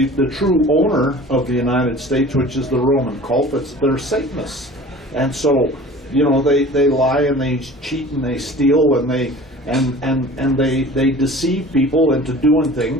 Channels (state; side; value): normal; both; correlation 0.43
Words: true owner of the United States, which is the Roman cult. They're Satanists. And so, they lie and they cheat and they steal and they deceive people into doing